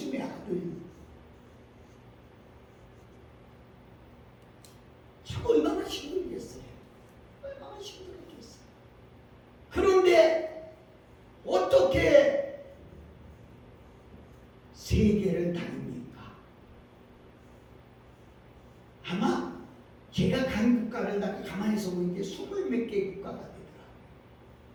아들. 참 얼마나 힘들겠어요. 얼마나 힘들겠어요. 그런데 어떻게 세계를 다닙니까? 아마 제가 간 국가를 가만히서 보니까 20몇 개 국가가 되더라고요.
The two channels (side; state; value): both; identical; correlation 1.00